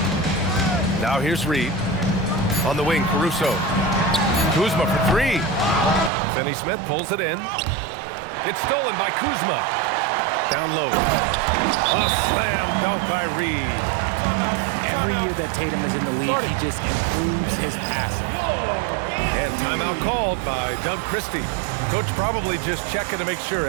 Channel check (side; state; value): left; drops out; at 6.1 s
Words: Now here's Reed. On the wing, Caruso. Kuzma for 3. Finney-Smith pulls it in. It's stolen by Kuzma. Down low. A slam dunk by Reed. Every year that Tatum is in the league, he just improves his passing. And timeout called by Doug Christie. Coach probably just checking to make sure